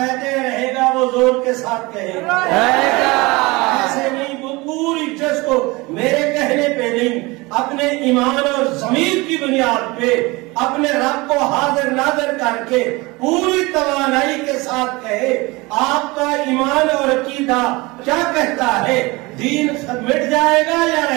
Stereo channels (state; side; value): quieter; left; 23.6 dB